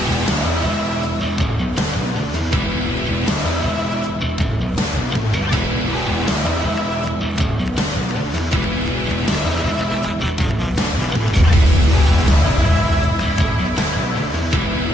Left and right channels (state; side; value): normal; both; correlation 0.76